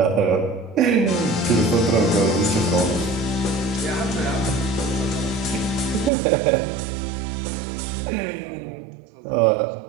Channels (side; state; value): left; drops out; at 6.1 s